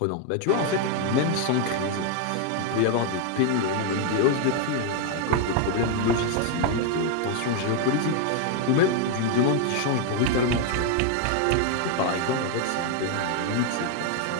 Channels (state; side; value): different; both; correlation 0.01